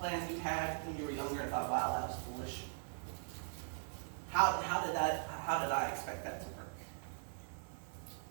you had when you were younger and thought, wow, that was foolish? How did I expect that to work?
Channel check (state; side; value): silent; left; 51 dB below the other